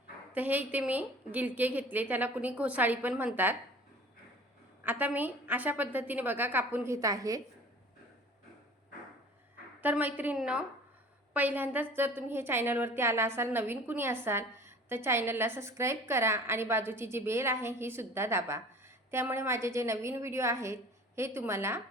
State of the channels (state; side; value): normal; both; correlation 0.45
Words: तर हे इथे मी गिलके घेतले, त्याला कुणी घोसाळी पण म्हणतात. आता मी अशा पद्धतीने बघा कापून घेत आहे. तर मैत्रिणींनो, पहिल्यांदाच जर तुम्ही हे चॅनलवरती आला असाल, नवीन कुणी असाल तर चॅनलला सबस्क्राईब करा आणि बाजूची जी बेल आहे ही सुद्धा दाबा. त्यामुळे माझे जे नवीन व्हिडिओ आहेत हे तुम्हाला